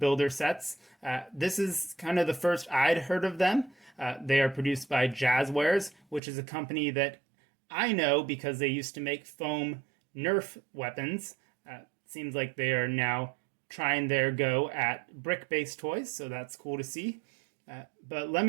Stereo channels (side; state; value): left; drops out; at 6.2 s